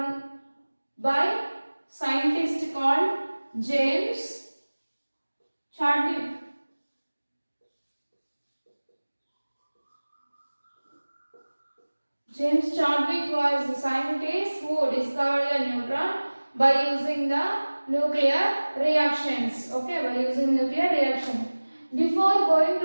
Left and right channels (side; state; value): both; inverted; correlation -1.00